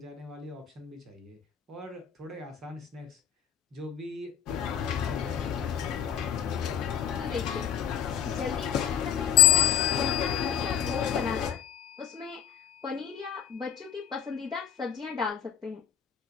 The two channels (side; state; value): right; quieter; 9.3 dB